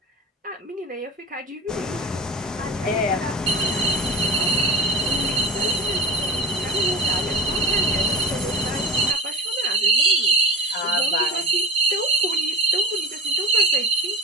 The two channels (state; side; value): normal; both; correlation 0.30